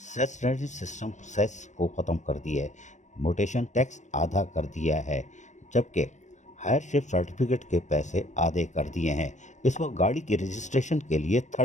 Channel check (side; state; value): right; late; 0.35 ms